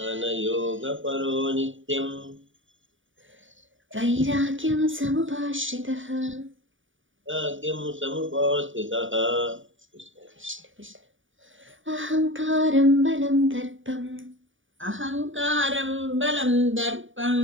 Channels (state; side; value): late; left; 0.57 ms